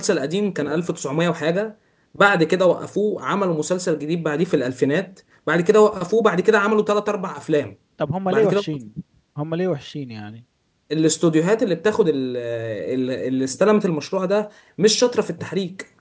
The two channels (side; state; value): both; identical; correlation 1.00